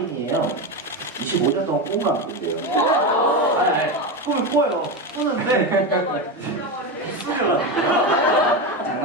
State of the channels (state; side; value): normal; both; correlation 0.16